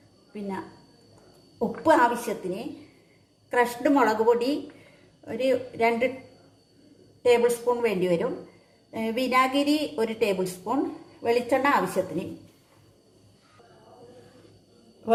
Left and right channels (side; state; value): both; identical; correlation 1.00